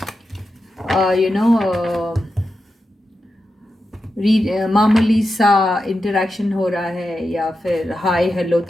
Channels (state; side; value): normal; both; correlation 0.89